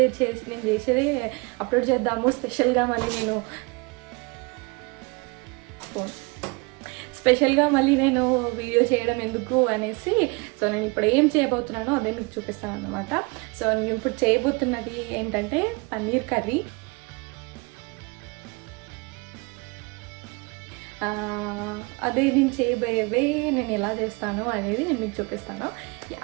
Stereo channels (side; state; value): left; quieter; 28.8 dB